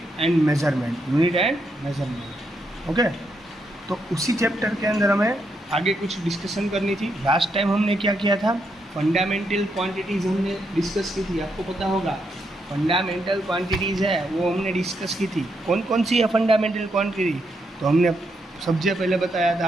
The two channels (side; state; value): both; normal; correlation 0.79